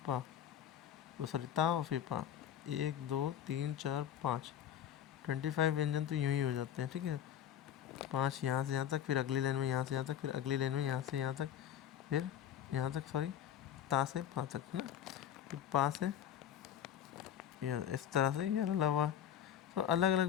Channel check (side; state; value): right; quieter; 10.1 dB